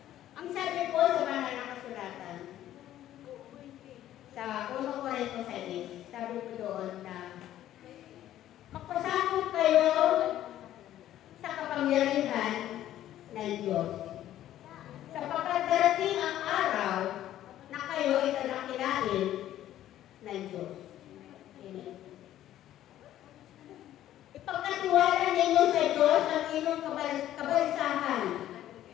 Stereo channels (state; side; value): quieter; right; 12.6 dB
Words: Ang sabi po sa banal na kasulatan, sa 1 Corinto 6, sabi ko doon na magpasakot kayo sa kapangyarihan ng Diyos. Sapagkat darating ang araw na kayo ay tadakilain ng Diyos. Amen. Ipagkatiwala ninyo sa Diyos ang inyong kabalisahan